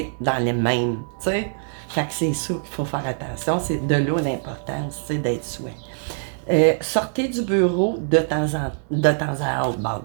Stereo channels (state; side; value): silent; left; digital silence